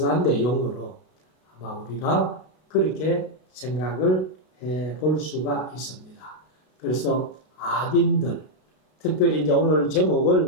내용으로 아마 우리가 그렇게 생각을 해 볼 수가 있습니다. 그래서 악인들, 특별히 이제 오늘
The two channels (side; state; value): right; late; 32 ms